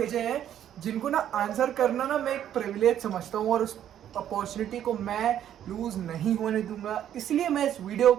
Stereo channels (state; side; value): quieter; left; 10.6 dB